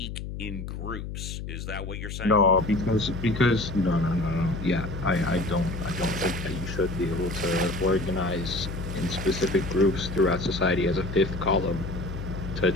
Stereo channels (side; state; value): left; noise; hum, 7 dB below the sound